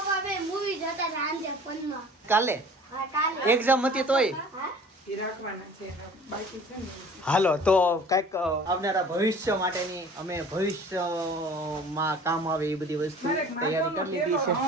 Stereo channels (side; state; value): both; normal; correlation 0.47